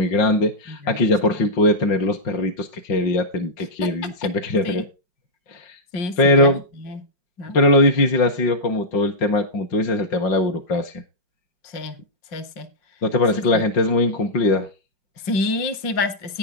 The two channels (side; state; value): right; late; 5.5 ms